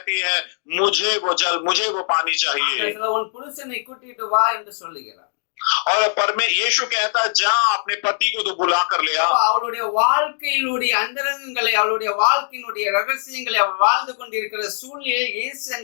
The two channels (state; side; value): silent; right; digital silence